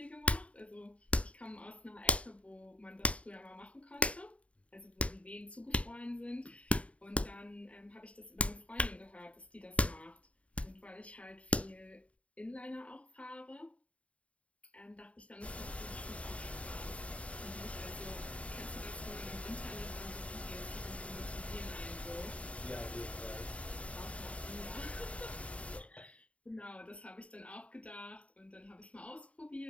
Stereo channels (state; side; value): late; right; 0.065 ms